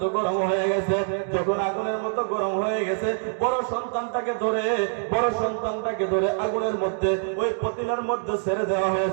গরম হয়ে গেছে। যখন আগুনের মতো গরম হয়ে গেছে, বড় সন্তানটাকে ধরে আগুনের মধ্যে, ওই পতিলার মধ্যে ছেড়ে দেওয়া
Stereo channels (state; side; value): silent; left; digital silence